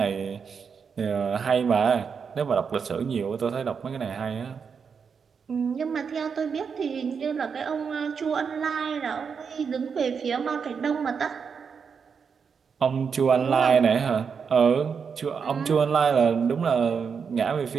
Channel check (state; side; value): quieter; left; 6.2 dB